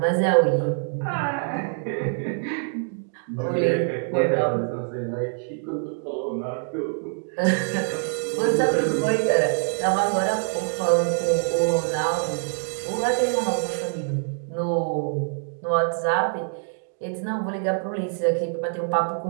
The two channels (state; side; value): silent; left; 62 dB below the other